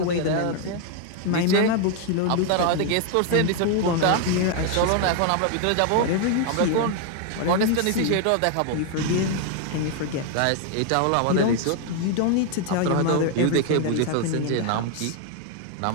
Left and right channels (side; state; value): both; different; correlation 0.00